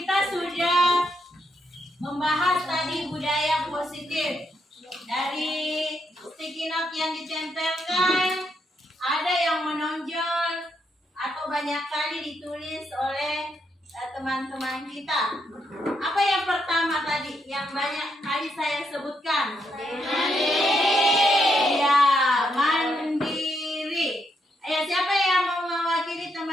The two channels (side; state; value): both; normal; correlation 0.79